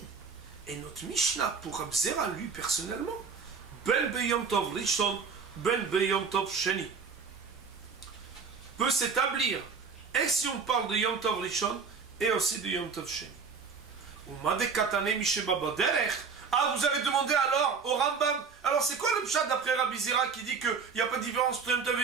et notre Mishnah pour Rabzera, lui personnellement, Ben Beyom Tov Rishon, Ben Beyom Tov Sheni, peut s'établir. Et si on parle de Yom Tov Rishon et aussi de Yom Tov Sheni. Ou Madekatane Misheba Baderech. Ah, vous avez demandé alors au Rambam. Alors c'est quoi le pshat d'après Rabbi Zera qui dit qu'il n'y a pas de différence entre Yom Tov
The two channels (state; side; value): quieter; left; 5.4 dB